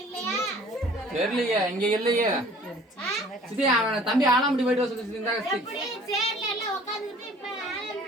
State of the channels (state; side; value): normal; both; correlation 0.51